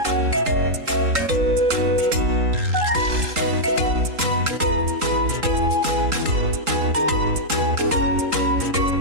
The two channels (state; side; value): late; left; 3.8 ms